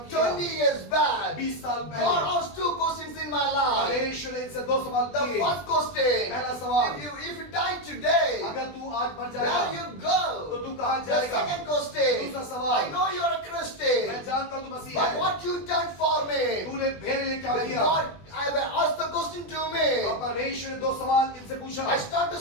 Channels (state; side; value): late; right; 20 ms